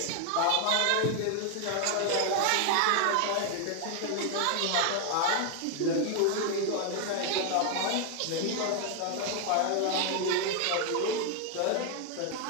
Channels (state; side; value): different; both; correlation 0.00